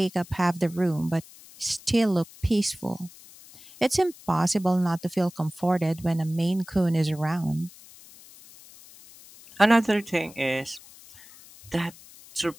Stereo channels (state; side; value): noise; left; hiss, 21 dB below the sound